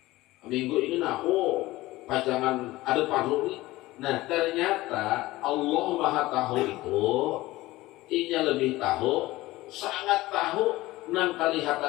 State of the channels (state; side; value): quieter; right; 18.3 dB